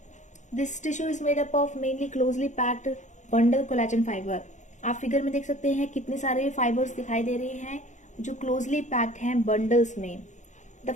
This tissue is made up of mainly closely packed bundle collagen fibre. आप फिगर में देख सकते हैं कितने सारे फाइबर्स दिखाई दे रहे हैं जो क्लोजली पैक्ड हैं बंडल्स में। The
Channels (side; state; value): right; late; 0.35 ms